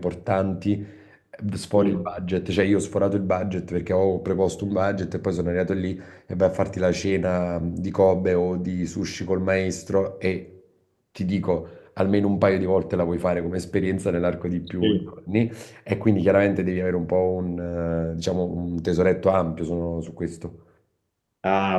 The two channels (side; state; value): both; identical; correlation 1.00